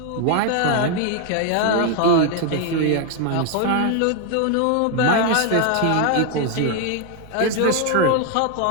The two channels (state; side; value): different; both; correlation 0.01